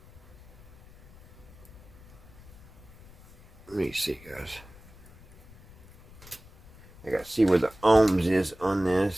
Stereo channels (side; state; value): left; noise; rumble, 22 dB below the sound